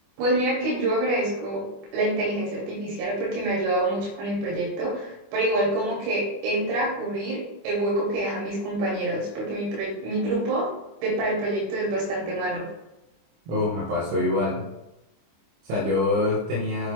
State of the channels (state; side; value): late; left; 25 ms